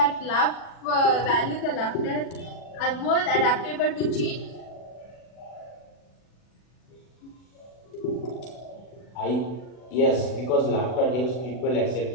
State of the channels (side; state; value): right; late; 40 ms